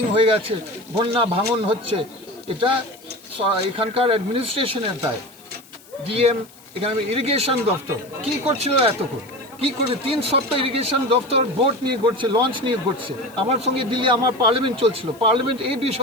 হয়ে গেছে, বন্যা ভাঙন হচ্ছে, এটা এখানকার অ্যাডমিনিস্ট্রেশনের দায়। ডিএম, এখানে ইরিগেশন দপ্তর কি করছিল এতক্ষণ, কি করে 3 সপ্তাহ ইরিগেশন দপ্তর বোট নিয়ে ঘুরছে, লঞ্চ নিয়ে ঘুরছে। আমার সঙ্গে দিল্লি আমার পার্লামেন্ট চলছিল, পার্লামেন্ট এই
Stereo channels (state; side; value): noise; left; hiss, 24 dB below the sound